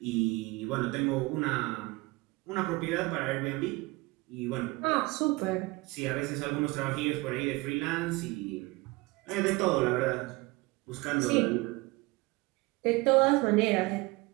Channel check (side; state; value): left; quieter; 23.5 dB